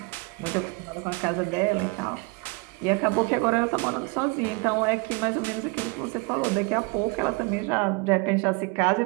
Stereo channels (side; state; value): left; quieter; 27.8 dB